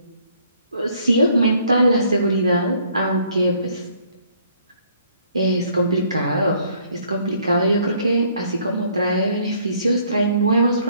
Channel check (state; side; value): inverted; both; correlation -0.64